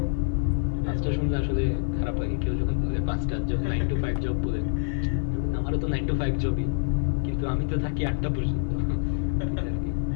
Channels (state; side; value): silent; right; digital silence